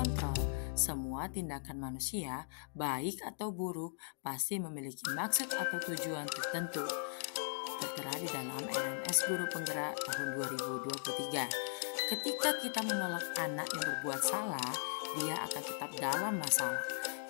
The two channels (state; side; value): silent; right; digital silence